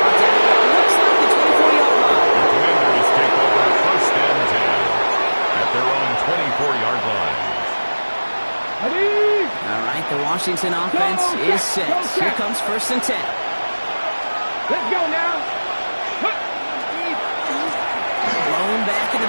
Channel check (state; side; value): inverted; both; correlation -1.00